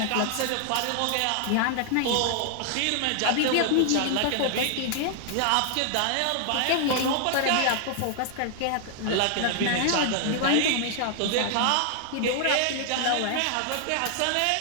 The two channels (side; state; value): both; different; correlation 0.00